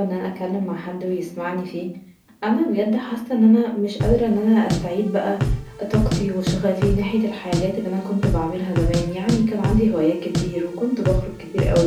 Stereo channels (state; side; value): identical; both; correlation 1.00